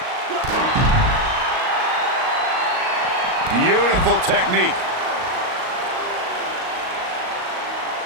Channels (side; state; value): left; late; 38 ms